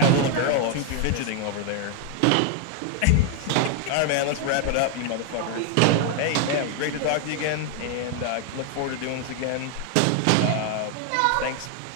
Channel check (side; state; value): both; different; correlation 0.00